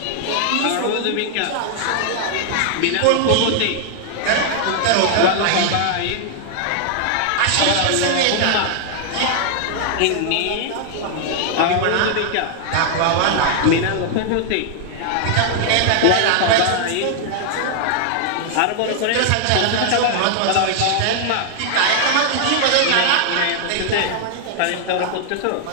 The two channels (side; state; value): both; different; correlation 0.00